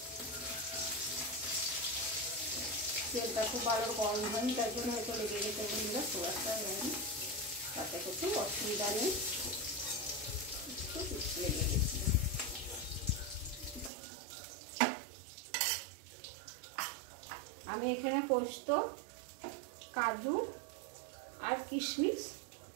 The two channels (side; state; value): left; drops out; at 13.9 s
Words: তেলটা খুব ভালো গরম হয়নি, তার জন্য হয়তো লেগে গেছে বন্ধুরা, সোয়াটা হয়নি, তাতে কিছু অসুবিধা নেই। লেগে গেছে। আমি এখানে পোস্ত, কাজু আর কিশমিশ